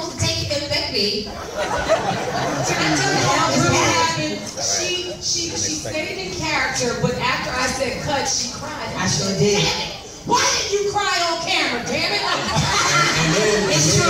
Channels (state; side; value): identical; both; correlation 1.00